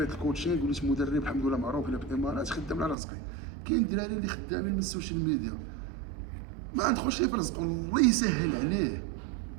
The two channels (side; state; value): left; drops out; at 3.0 s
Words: الكوتشينغ وليت مدرب الحمد لله معروف هنا في الامارات، خدام على رزقي. كاين الدراري اللي خدامين من السوشيال ميديا ما ندخلش ليه في رزقو، الله يسهل عليه.